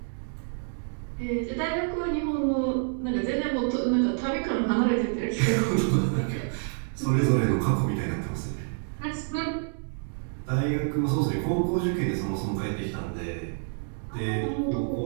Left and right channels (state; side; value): silent; left; 59 dB below the other